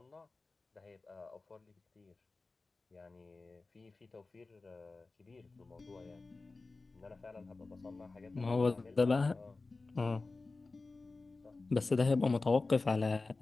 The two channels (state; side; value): quieter; right; 3.6 dB